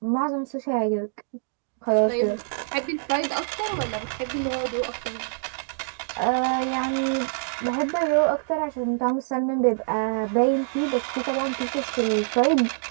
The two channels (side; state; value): left; silent; digital silence